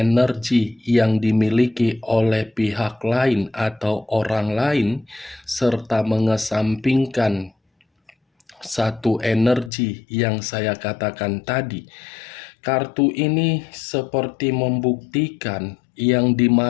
yang dimiliki oleh pihak lain atau orang lain, serta mengesampingkan satu energi yang saya katakan tadi, kartu ini seperti membuktikan yang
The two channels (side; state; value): right; drops out; at 9.7 s